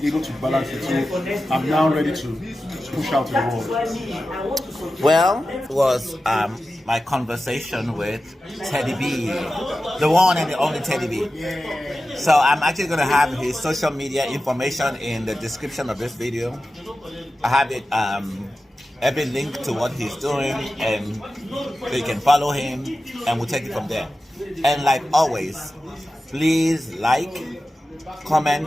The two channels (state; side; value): normal; both; correlation 0.93